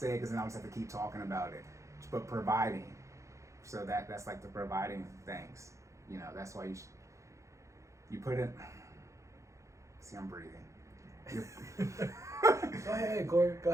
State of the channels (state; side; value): late; left; 0.15 ms